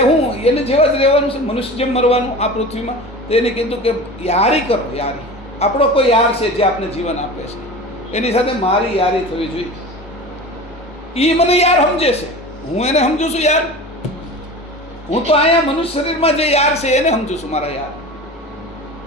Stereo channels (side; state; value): both; normal; correlation 0.34